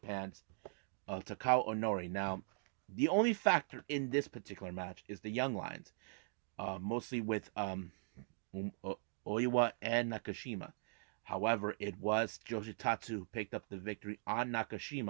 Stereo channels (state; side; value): silent; left; digital silence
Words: Takao Onori. Now, the only factor in this particular match is the Young Lions, mostly with Oiwa and Nakashima. However, it was Yoshitatsu who picked up the victory on